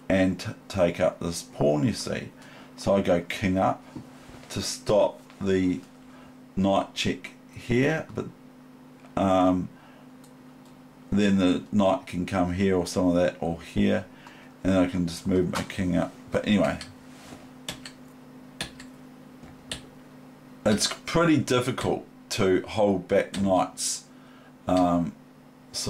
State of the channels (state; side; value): identical; both; correlation 1.00